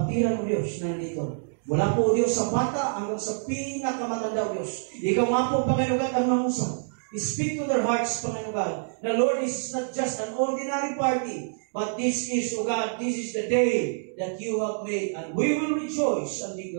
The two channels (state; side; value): silent; left; digital silence